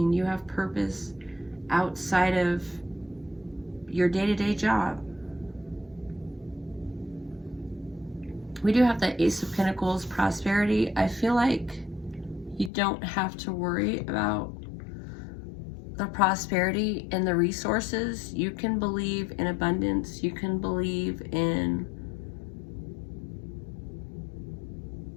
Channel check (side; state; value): right; drops out; at 12.7 s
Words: you have purpose outside of your day-to-day job. We do have the Ace of Pentacles, prosperity. I feel like you don't have to worry about the prosperity and the resources. You can believe in abundance. You can believe in